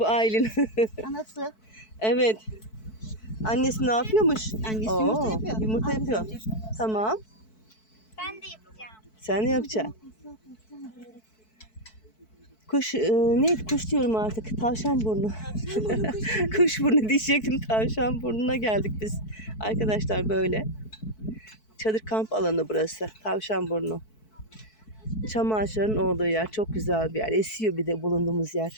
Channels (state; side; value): late; right; 4.6 ms